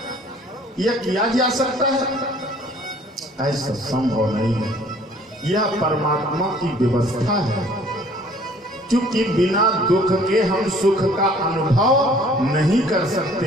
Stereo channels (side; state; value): both; normal; correlation 0.55